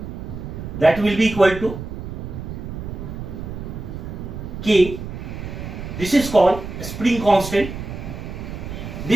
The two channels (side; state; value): right; noise; rumble, 8 dB below the sound